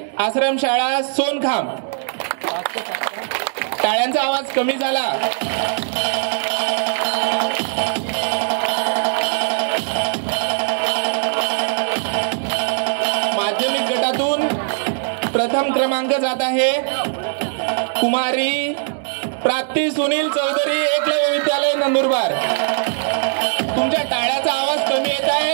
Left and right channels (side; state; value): left; silent; digital silence